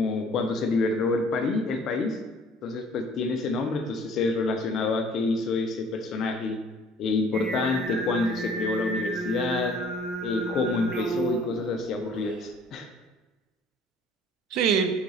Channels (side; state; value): both; normal; correlation 0.53